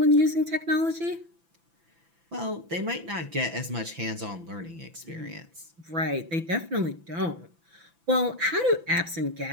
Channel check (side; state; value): left; late; 6.0 ms